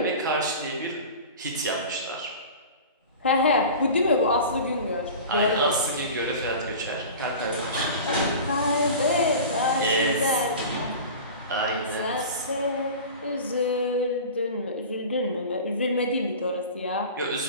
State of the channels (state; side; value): inverted; both; correlation -0.36